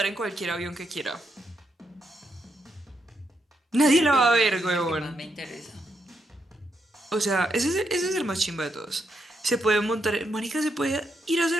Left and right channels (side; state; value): both; normal; correlation 0.80